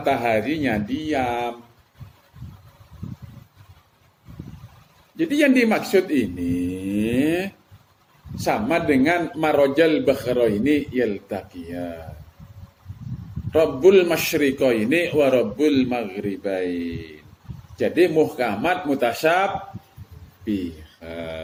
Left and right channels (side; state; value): both; identical; correlation 1.00